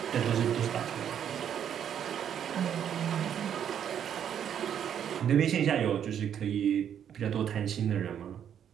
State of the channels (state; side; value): quieter; left; 9.1 dB